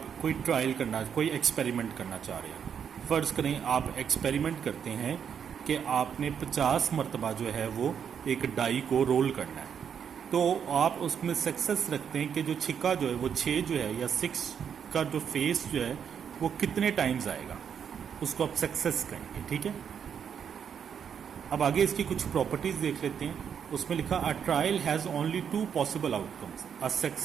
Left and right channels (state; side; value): quieter; left; 7.8 dB